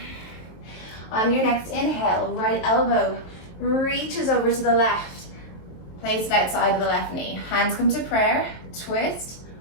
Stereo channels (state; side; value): late; right; 23 ms